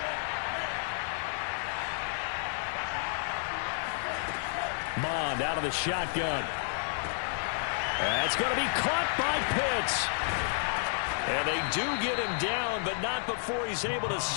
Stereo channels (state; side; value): silent; right; digital silence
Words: Mond out of the shotgun. That's going to be caught by Pitts. And they do get him down, but not before he's able to